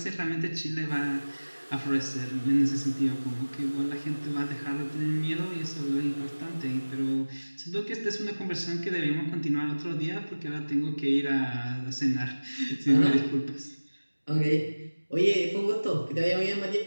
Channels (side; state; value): both; inverted; correlation -1.00